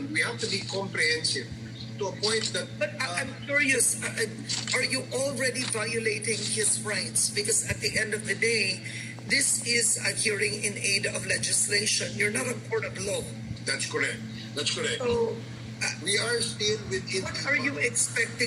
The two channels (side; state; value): both; identical; correlation 1.00